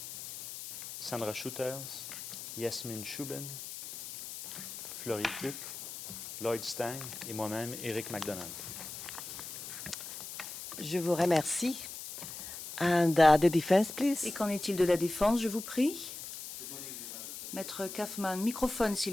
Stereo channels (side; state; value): left; noise; hiss, 10 dB below the sound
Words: Sandra Shooters, Yasmine Chouben, Florie Pluck, Lloyd Stang et moi-même, Éric McDonald. Je vous remercie. And the defense, please. Et qu'en est-il de la défense, je vous prie? Maître Kaufman, microphone,